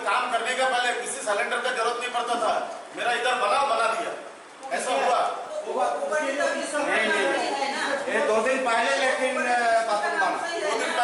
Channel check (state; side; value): identical; both; correlation 1.00